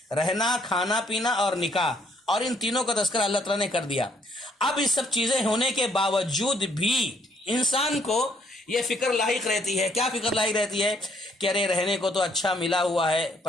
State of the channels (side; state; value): both; normal; correlation 0.68